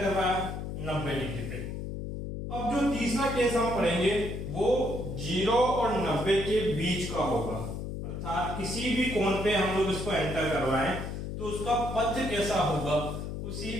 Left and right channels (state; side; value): noise; left; hum, 6 dB below the sound